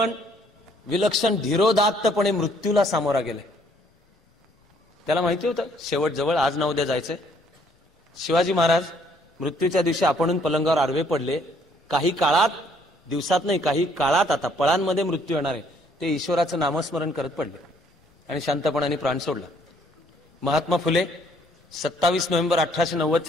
विलक्षण धीरोदात्तपणे मृत्यूला सामोरा गेले. त्याला माहिती होतं शेवट जवळ, आज ना उद्या जायचंय. शिवाजी महाराज मृत्यूच्या दिवशी आपणून पलंगावर आडवे पडले, काही काळात, दिवसात नाही, काही काळात आता पळांमध्ये मृत्यू येणार आहे, ते ईश्वराचं नामस्मरण करत पडले आणि शांतपणाने प्राण सोडला. महात्मा फुले 27 नोव्हेंबर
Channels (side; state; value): both; normal; correlation 0.64